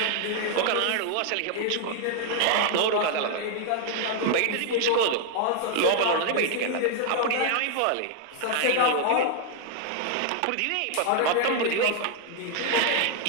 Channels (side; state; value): both; different; correlation 0.00